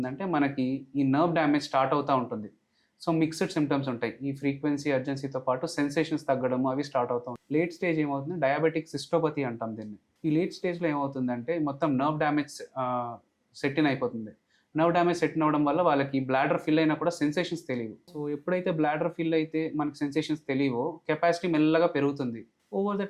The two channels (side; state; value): both; identical; correlation 1.00